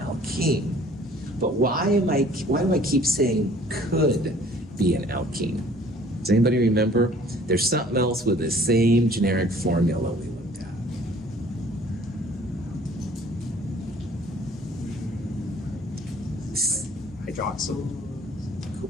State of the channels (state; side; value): normal; both; correlation 0.53